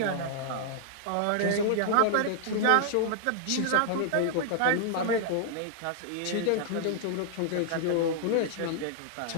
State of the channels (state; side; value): different; both; correlation -0.01